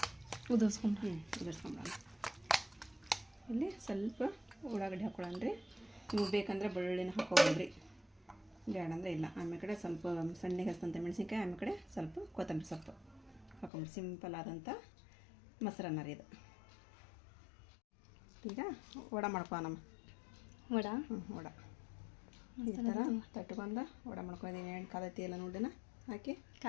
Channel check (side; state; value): right; drops out; at 13.7 s